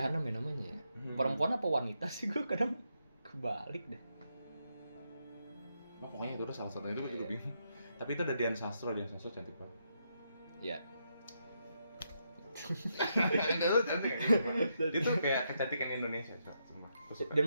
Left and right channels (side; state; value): both; inverted; correlation -0.80